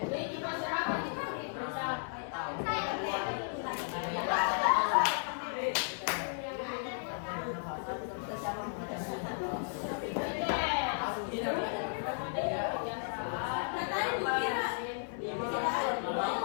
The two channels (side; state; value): right; silent; 55 dB below the other